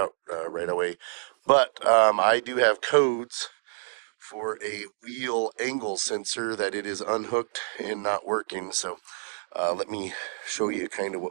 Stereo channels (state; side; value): silent; left; digital silence